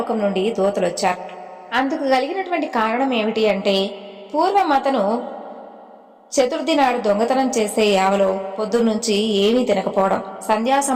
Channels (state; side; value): identical; both; correlation 1.00